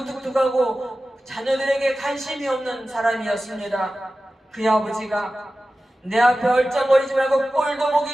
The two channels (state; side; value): normal; both; correlation 0.95